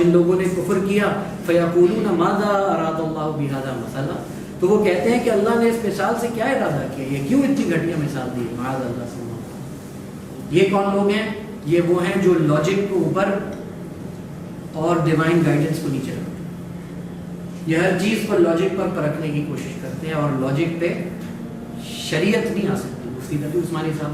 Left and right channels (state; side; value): identical; both; correlation 1.00